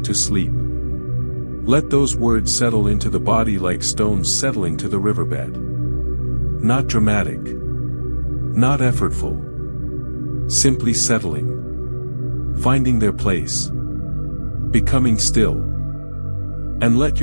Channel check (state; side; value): inverted; both; correlation -1.00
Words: to sleep. Let those words settle into the body like stones settling to the riverbed. Not dramatic. Not effortful. Simply settling. Finding their place. Becoming still. And let